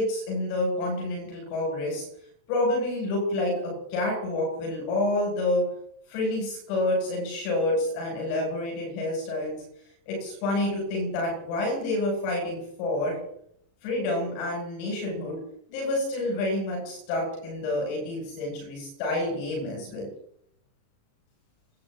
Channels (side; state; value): right; late; 36 ms